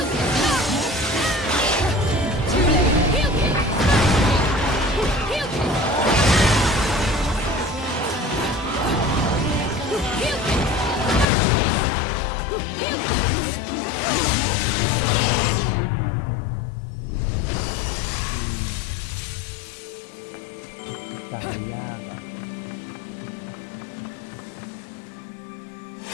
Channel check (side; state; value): right; drops out; at 11.2 s